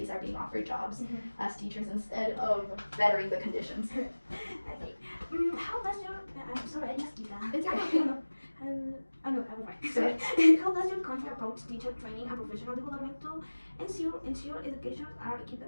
are being offered jobs as teachers instead of bettering the conditions. Okay. How does your sorry, I just did that. It's okay. No, I was right. Sorry. How does your country approach teacher training and professional development to ensure educators are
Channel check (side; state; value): both; inverted; correlation -1.00